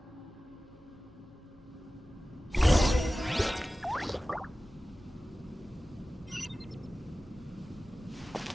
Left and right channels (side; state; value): both; normal; correlation 0.96